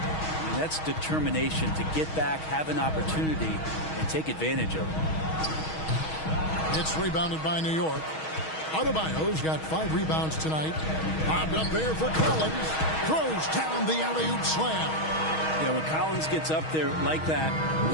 that's determination to get back, have an opportunity, and take advantage of it. It's rebounded by New York. Adebayo's got 5 rebounds tonight. Bobbed up there for Collins. Throws down the alley-oop slam. Yeah, when Collins gets up there like that,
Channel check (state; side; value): late; right; 6.3 ms